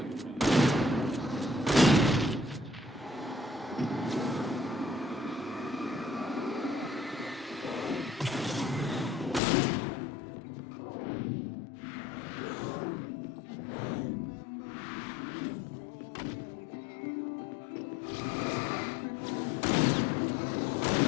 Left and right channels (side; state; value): right; drops out; at 9.4 s